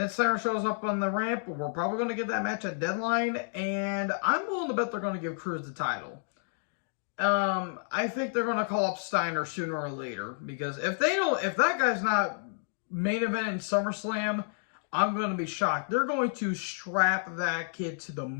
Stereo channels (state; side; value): silent; right; digital silence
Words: Siren shows up on the ramp. We're probably going to get that match at Deadline. And I'm willing to bet they're going to give Cruz the title. I think they're going to call up Steiner sooner or later. Because if that guy's not main event in SummerSlam, I'm going to be shocked. They're going to strap that kid to the